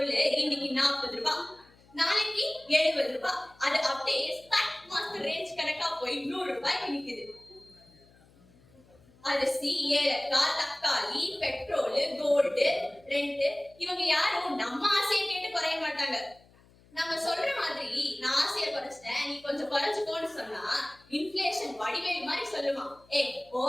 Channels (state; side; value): noise; left; hum, 28 dB below the sound